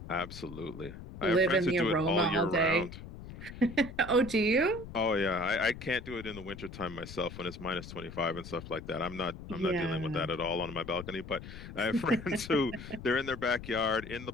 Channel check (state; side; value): noise; left; rumble, 12 dB below the sound